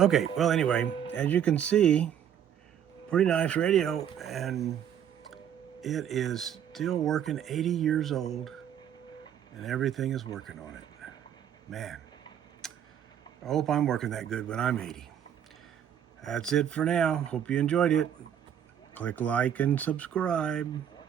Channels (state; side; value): quieter; left; 9.5 dB